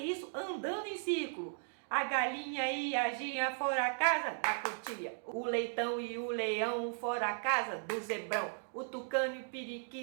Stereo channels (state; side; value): silent; left; digital silence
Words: andando em círculo. A galinha e a gia foram à casa da cutia. O leitão e o leão foram à casa do zebrão. O tucano e o